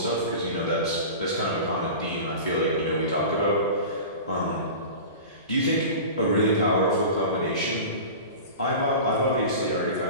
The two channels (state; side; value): inverted; both; correlation -0.34